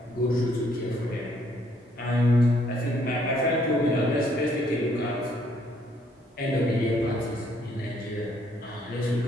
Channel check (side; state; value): both; normal; correlation 0.67